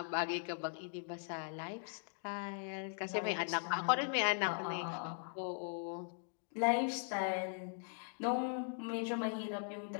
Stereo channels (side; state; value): right; silent; digital silence